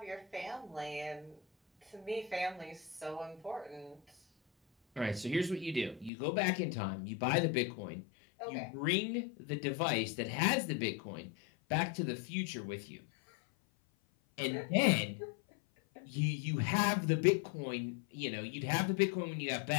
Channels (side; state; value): right; drops out; at 6.1 s